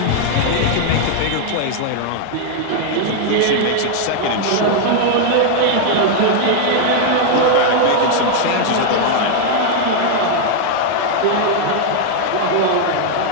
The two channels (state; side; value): different; both; correlation 0.00